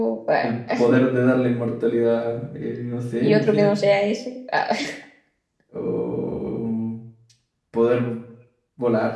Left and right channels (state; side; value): identical; both; correlation 1.00